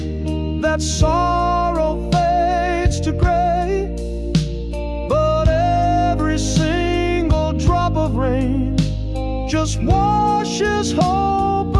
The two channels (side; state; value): both; identical; correlation 1.00